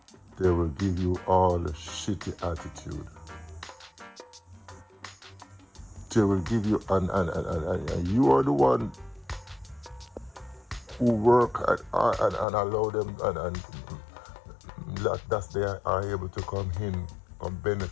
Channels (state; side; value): drops out; right; at 12.5 s